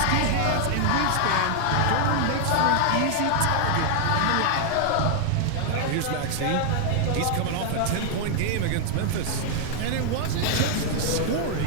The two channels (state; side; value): different; both; correlation 0.00